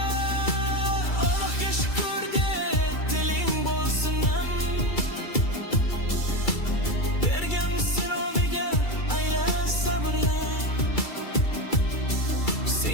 shukr de, tiling bo'lsin nam,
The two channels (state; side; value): late; right; 2.3 ms